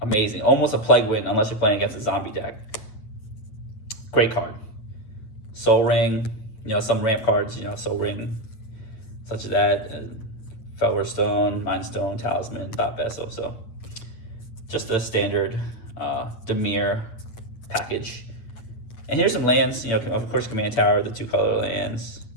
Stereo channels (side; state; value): right; late; 8.7 ms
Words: amazing. Almost a plague win unless you're playing against a zombie deck. Great card. Soul Ring. You know, some ramp cards, you know, Soul Ring, such as that. Felwer Stone, Mind Stone, Talisman, Thought Vessel. So just a standard Dimir package. And here's some lands. You know, of course, Command Tower, the 2-color lands.